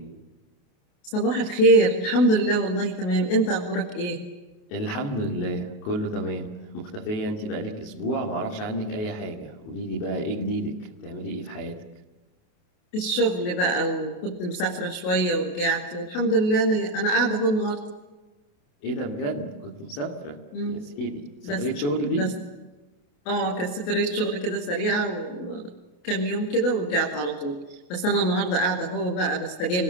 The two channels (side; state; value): right; late; 28 ms